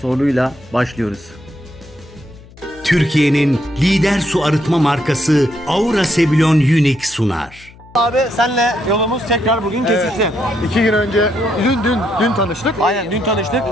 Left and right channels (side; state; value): left; noise; hum, 23 dB below the sound